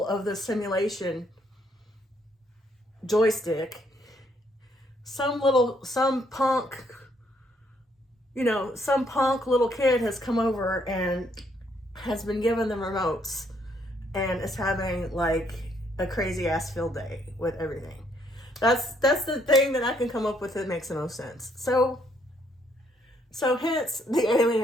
of the simulation joystick, some punk little kid has come over and has been given the remotes and is having like a crazy ass field day with everything. That's the thing that I can come up with that makes the most sense. So hence the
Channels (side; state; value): both; normal; correlation 0.70